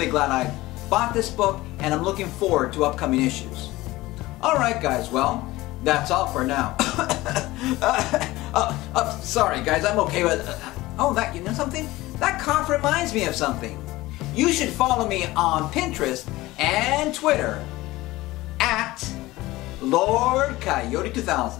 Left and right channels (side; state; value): right; quieter; 18.7 dB